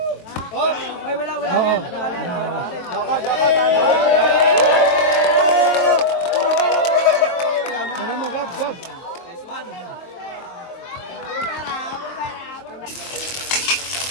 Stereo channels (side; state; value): right; late; 22 ms